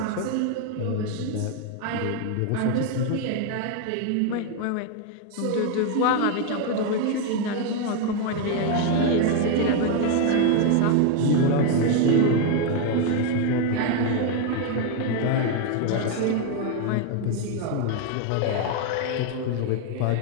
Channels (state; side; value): different; both; correlation 0.01